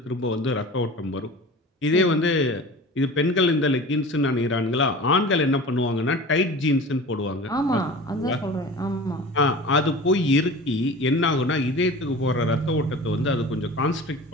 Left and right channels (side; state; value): both; normal; correlation 0.37